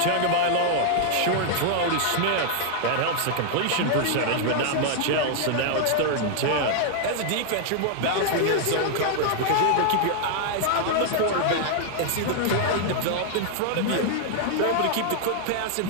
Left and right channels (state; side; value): different; both; correlation 0.00